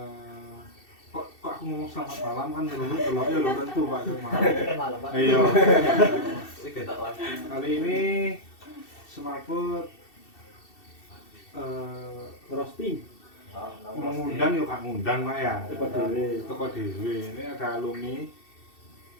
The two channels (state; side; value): late; right; 2.7 ms